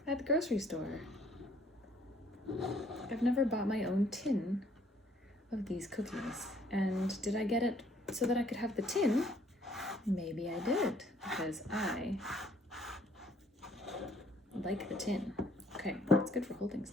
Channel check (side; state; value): both; normal; correlation 0.62